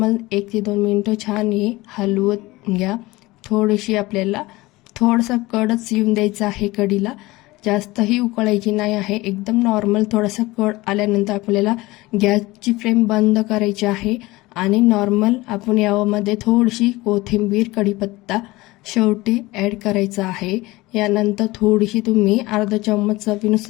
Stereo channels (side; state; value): right; quieter; 20.4 dB